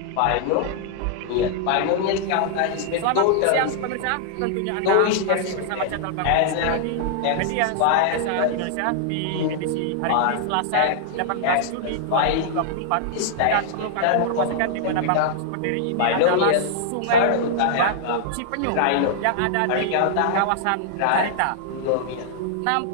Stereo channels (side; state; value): both; different; correlation -0.01